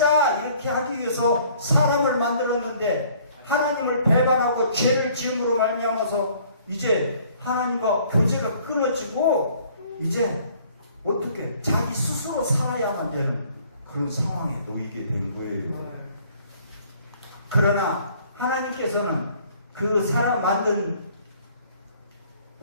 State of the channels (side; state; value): both; inverted; correlation -0.57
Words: 이렇게 하기 위해서 사람을 만들었는데 하나님을 배반하고 죄를 지음으로 말미암아서 이제 하나님과 교제가 끊어지고 이제 어떻게 자기 스스로 살아야만 되는 그런 상황에 놓이게 된 거예요. 그러나 하나님께서는 그 사람 만든